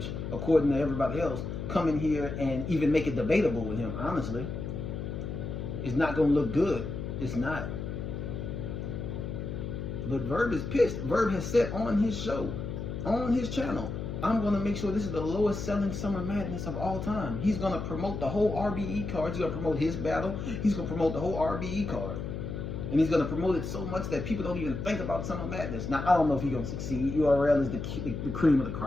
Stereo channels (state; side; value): noise; left; hum, 5 dB below the sound